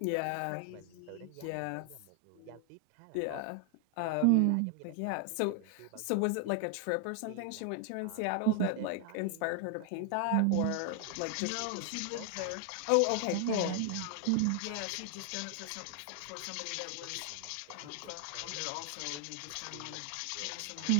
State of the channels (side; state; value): both; different; correlation 0.00